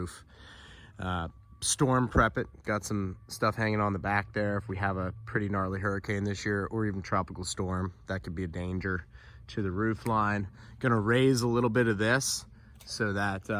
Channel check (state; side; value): identical; both; correlation 1.00